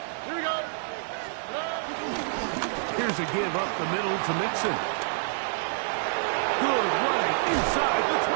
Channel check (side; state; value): left; silent; digital silence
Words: Here we go. Here's a give up the middle to Mixon. Good running inside the